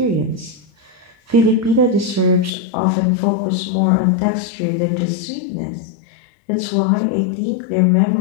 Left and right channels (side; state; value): right; drops out; at 2.5 s